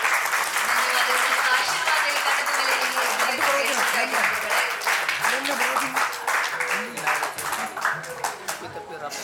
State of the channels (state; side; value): identical; both; correlation 1.00